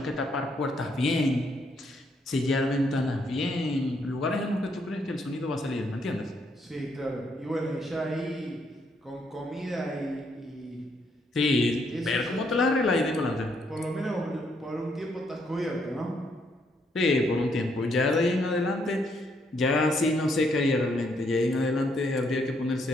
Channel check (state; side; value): normal; both; correlation 0.73